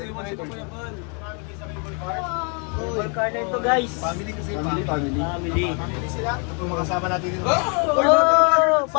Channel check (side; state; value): right; quieter; 37.3 dB